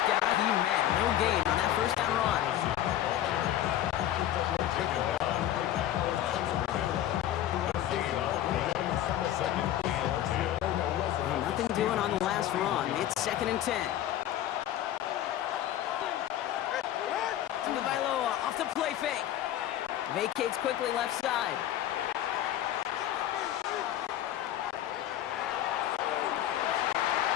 down he met. No gain on that first down run. Well, nothing doing on the last run. It's second and 10. Tagovailoa off the play fake. Vacates quickly left side.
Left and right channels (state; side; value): quieter; right; 12.3 dB